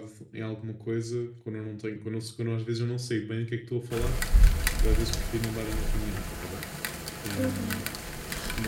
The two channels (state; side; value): identical; both; correlation 1.00